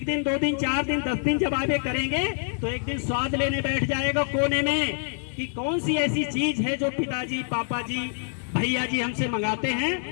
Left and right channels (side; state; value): right; silent; 61 dB below the other